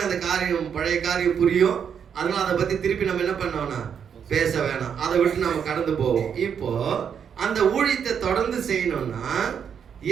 அந்த காரியம், பழைய காரியம் புரியும். அதனால அதை பத்தி திருப்பி நம்ம என்ன பண்ணோம்னா பேச வேணாம், அதை விட்டு நம்ம கடந்து போவோம். இப்போ அந்த ஊழியத்தை தொடர்ந்து செய்யணும்னா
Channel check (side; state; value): left; quieter; 7.6 dB